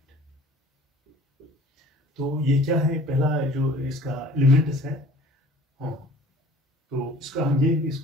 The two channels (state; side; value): normal; both; correlation 0.48